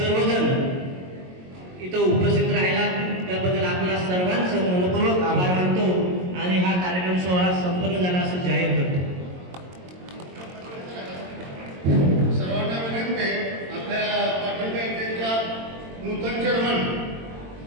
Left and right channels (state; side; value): late; left; 22 ms